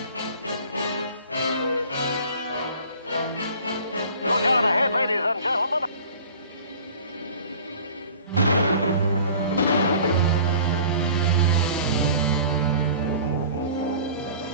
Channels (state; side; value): inverted; both; correlation -0.45